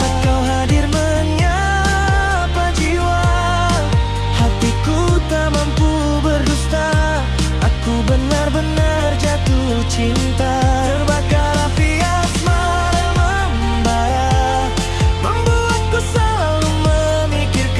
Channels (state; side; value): identical; both; correlation 1.00